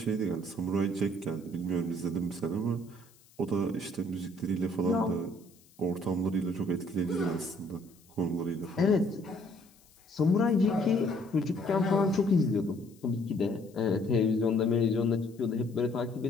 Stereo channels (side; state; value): left; noise; hiss, 29 dB below the sound